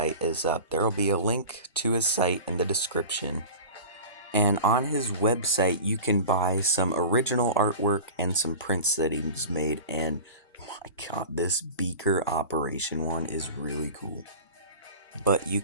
is up. There will be a link to his site in the description. And on his website, you can buy some original artwork and some prints that he's made. And my god, this beaker operation one is really cool. But you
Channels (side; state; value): both; inverted; correlation -0.35